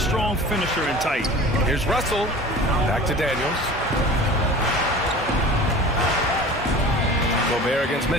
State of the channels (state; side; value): normal; both; correlation 0.40